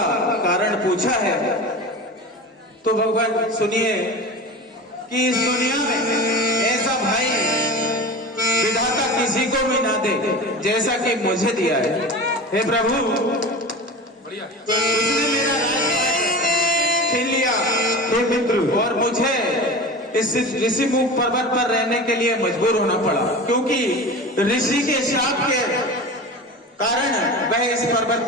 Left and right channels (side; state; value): both; normal; correlation 0.32